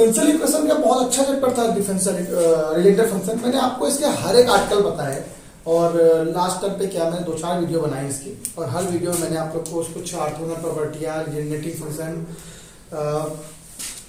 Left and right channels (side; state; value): both; identical; correlation 1.00